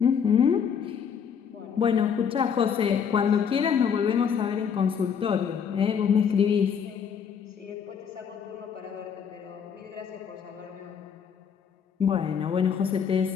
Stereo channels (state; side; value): quieter; right; 7.2 dB